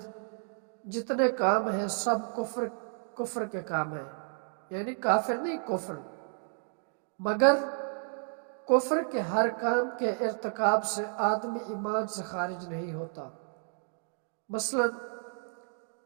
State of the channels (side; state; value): left; silent; 57 dB below the other